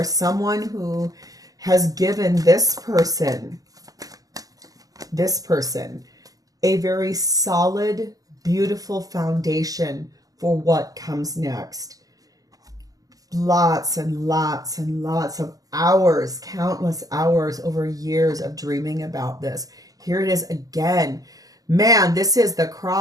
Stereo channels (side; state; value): left; late; 0.17 ms